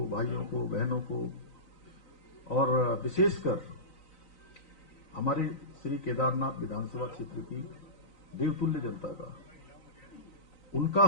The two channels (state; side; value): late; right; 3.9 ms